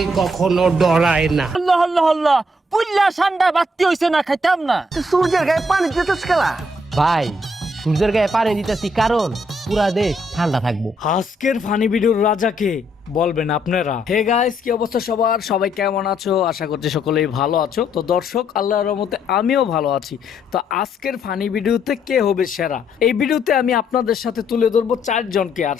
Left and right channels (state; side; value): normal; both; correlation 0.72